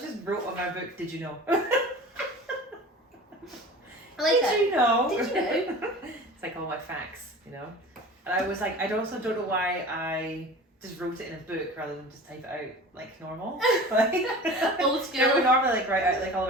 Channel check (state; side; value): normal; both; correlation 0.38